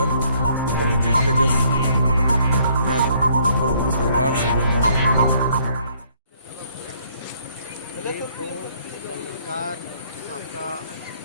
पहुंचे तेजस्वी यादव और उनके परिवार से बलात्कार, आपका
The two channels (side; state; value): both; inverted; correlation -0.64